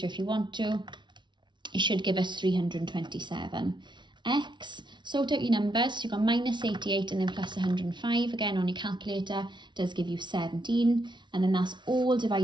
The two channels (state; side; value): late; left; 0.23 ms